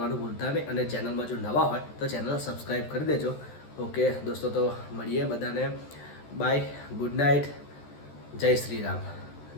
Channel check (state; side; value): late; right; 14 ms